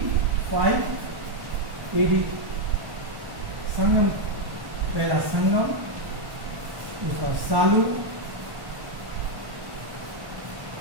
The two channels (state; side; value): late; left; 1.1 ms